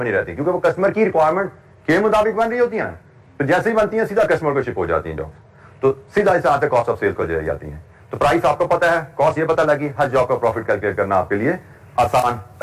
نہیں رہتی, کیونکہ وہ کسٹمر کی ریکوائرمنٹ کے مطابق بن رہی ہوتی ہیں. تو جیسے ہی بنتی ہیں سیدھا کسٹمر کو شپ ہو جاتی ہیں جاب, تو سیدھا اس آتے کاسٹ آف سیلز کو چلی جاتی ہیں. تو پرائس آپ کو پتا ہے, کاسٹ یہ پتا لگی, ہر جاب کا پروفٹ کیلکولیٹ کرنا آپ کے لیے آسان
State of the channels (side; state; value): both; identical; correlation 1.00